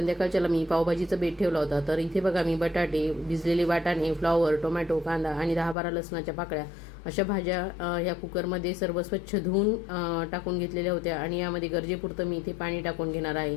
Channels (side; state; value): right; drops out; at 5.8 s